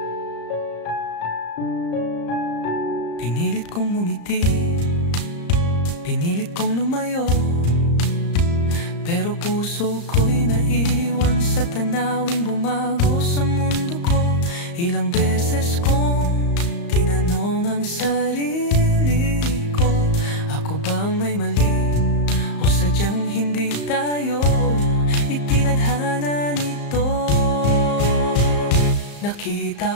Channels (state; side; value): late; right; 35 ms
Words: Pinilit kong ngumiti, pinilit kong lumayo. Pero puso ko'y naiwan sa tanawing bumago sa mundo ko. Ilang beses kong tinanong ang sarili ko, ako bang may mali o sadyang hindi tayo itinadhana nito?